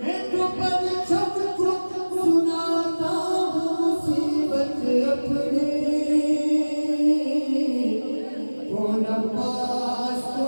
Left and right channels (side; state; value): both; inverted; correlation -1.00